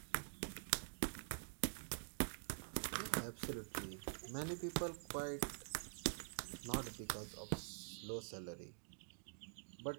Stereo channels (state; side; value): silent; left; digital silence